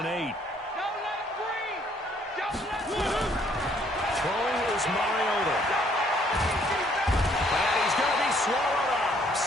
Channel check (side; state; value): both; normal; correlation 0.65